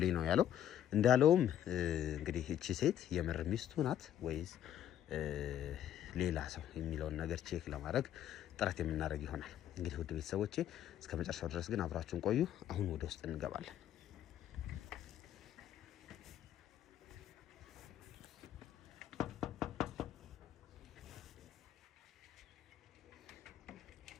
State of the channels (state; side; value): quieter; right; 11.0 dB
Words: ነው ያለው። እንዳለውም እንግዲህ እቺ ሴት የምር ሚስቱ ናት ወይስ ሌላ ሰው የሚለውን ነገር ቼክ ለማድረግ ጥረት የምናደርግ ይሆናል። እንግዲህ ውድ ቤተሰቦቼ እስከ መጨረሻው ድረስ ግን አብራችሁን ቆዩ። አሁን ወደ ውስጥ እንገባለን።